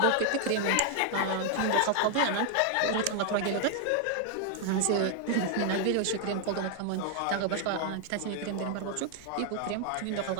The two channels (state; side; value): different; both; correlation 0.00